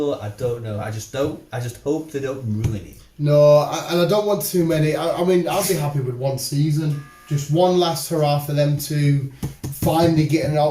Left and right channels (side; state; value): both; identical; correlation 1.00